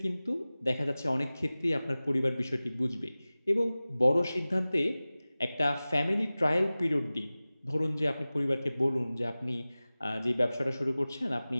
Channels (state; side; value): inverted; both; correlation -0.98